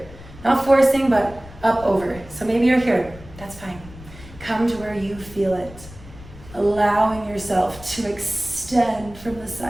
Not forcing, but up over. So maybe you're here. That's fine. Come to where you feel it. Allowing yourself to extend from the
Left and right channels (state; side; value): noise; left; rumble, 18 dB below the sound